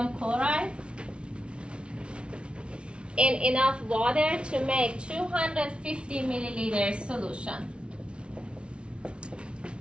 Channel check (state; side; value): late; left; 0.057 ms